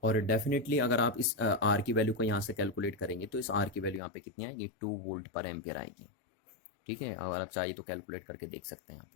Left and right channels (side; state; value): right; drops out; at 4.0 s